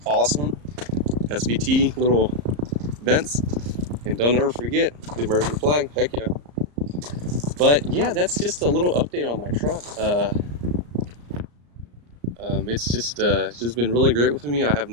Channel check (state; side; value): late; left; 34 ms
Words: awesome. SVT little vents, and don't ever forget the American flag. Heck yeah. But yeah, that's just a little update on my truck. It's just been really great with me. I